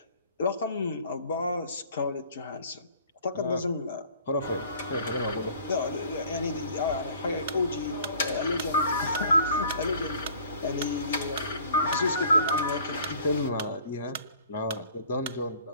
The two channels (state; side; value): inverted; both; correlation -0.51